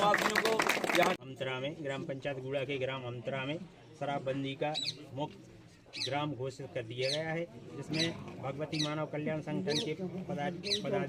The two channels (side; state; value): both; identical; correlation 1.00